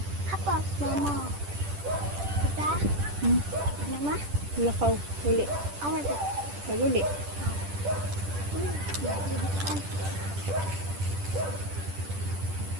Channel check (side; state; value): left; late; 10 ms